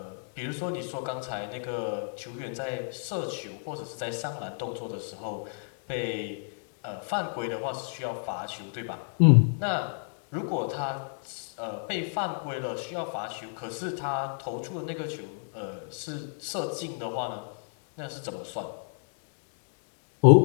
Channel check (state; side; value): silent; right; digital silence